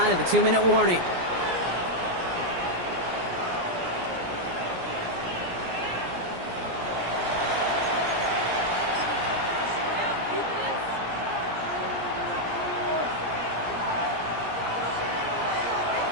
of the 2-minute warning.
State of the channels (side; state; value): left; late; 17 ms